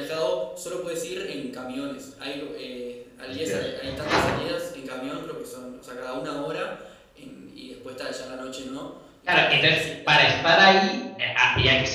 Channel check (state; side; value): identical; both; correlation 1.00